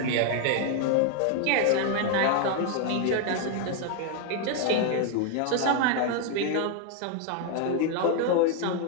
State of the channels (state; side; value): different; both; correlation 0.00